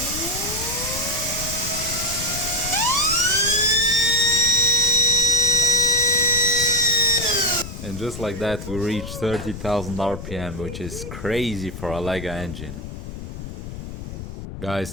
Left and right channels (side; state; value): left; noise; rumble, 9 dB below the sound